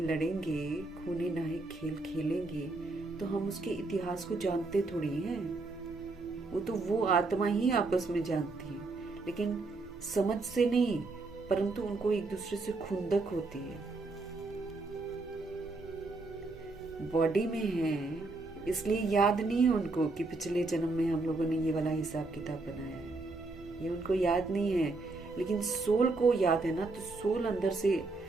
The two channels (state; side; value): quieter; left; 3.4 dB